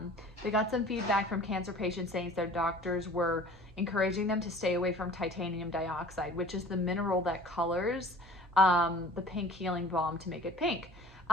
they got some feedback from cancer patients saying their doctors were encouraging them to stay away from titanium dioxide, which is the mineral that colors the pink healing balm to make it pink.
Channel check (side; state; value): both; normal; correlation 0.46